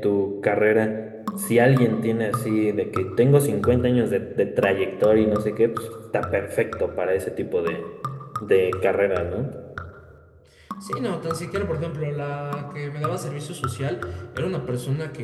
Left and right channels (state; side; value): identical; both; correlation 1.00